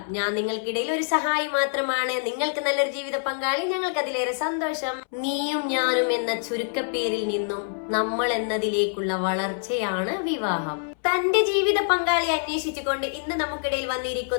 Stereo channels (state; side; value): silent; right; 61 dB below the other